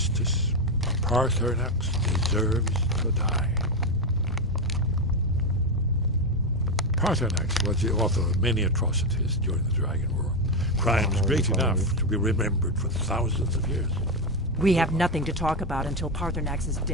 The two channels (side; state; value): both; normal; correlation 0.08